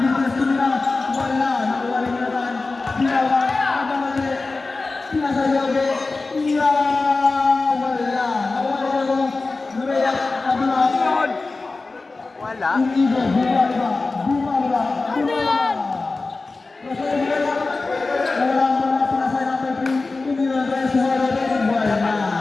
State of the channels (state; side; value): quieter; right; 3.6 dB